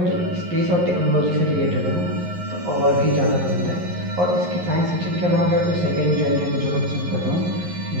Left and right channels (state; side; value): late; left; 11 ms